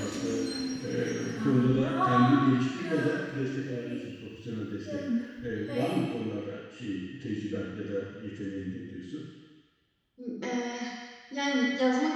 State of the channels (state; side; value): identical; both; correlation 1.00